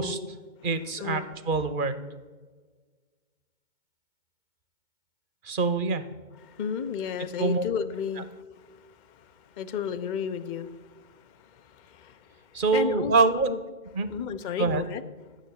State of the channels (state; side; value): late; left; 2.4 ms